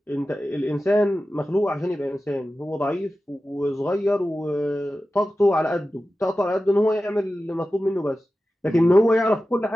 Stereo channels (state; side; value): normal; both; correlation 0.94